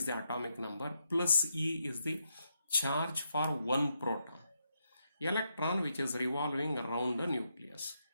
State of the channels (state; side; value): inverted; both; correlation -0.81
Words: the atomic number, plus E is the charge for one proton. Electron which is revolving around the nucleus.